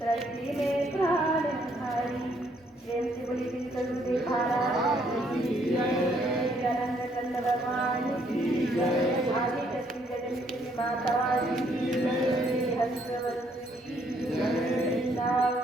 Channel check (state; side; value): normal; both; correlation 0.69